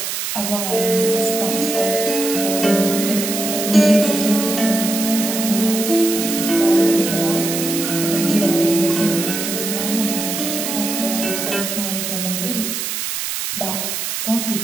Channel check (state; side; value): noise; right; hiss, 3 dB below the sound